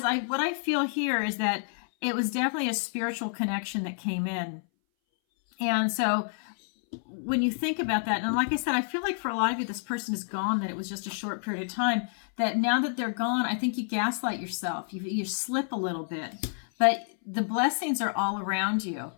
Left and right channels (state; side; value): silent; right; 59 dB below the other